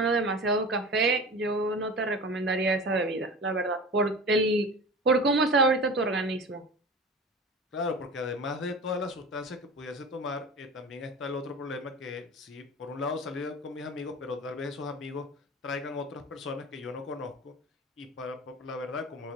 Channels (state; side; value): normal; both; correlation 0.35